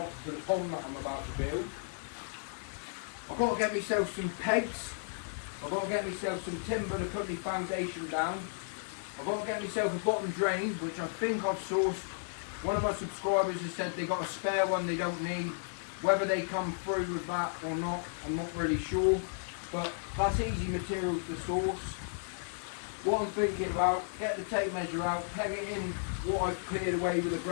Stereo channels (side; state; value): right; silent; digital silence